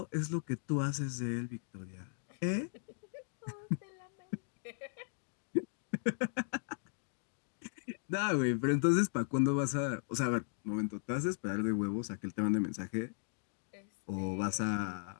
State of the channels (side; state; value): right; silent; digital silence